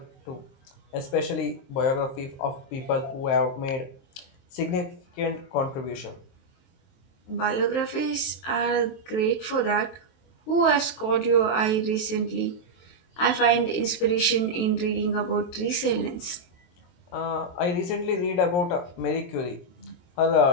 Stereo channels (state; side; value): late; right; 23 ms